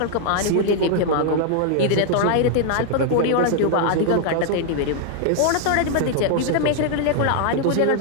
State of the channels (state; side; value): different; both; correlation 0.00